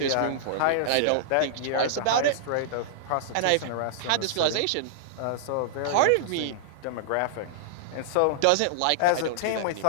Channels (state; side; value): different; both; correlation -0.01